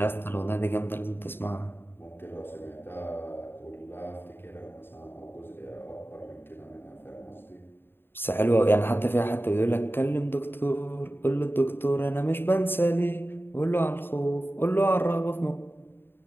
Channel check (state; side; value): late; right; 0.10 ms